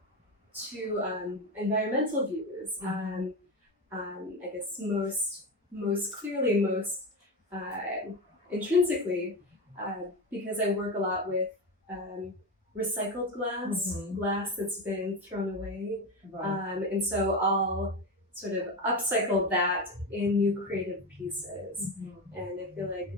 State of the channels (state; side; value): normal; both; correlation 0.19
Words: to environmental views. I guess most clearly, most intrinsically, because I work a lot with recycled glass that's been thrown away. Right. And so I'll sort of upcycle that in new creative pieces. And I feel